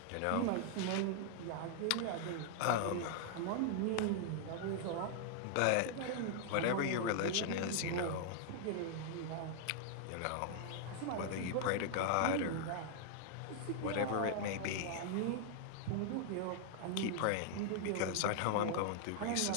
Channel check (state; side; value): different; both; correlation 0.00